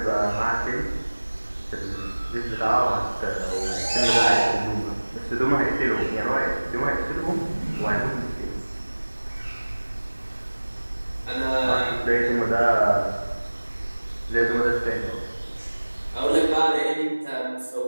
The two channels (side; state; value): both; inverted; correlation -1.00